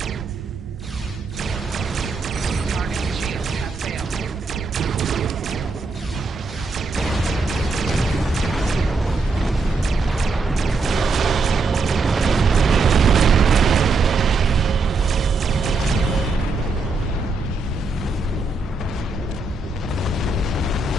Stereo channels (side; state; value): left; quieter; 3.8 dB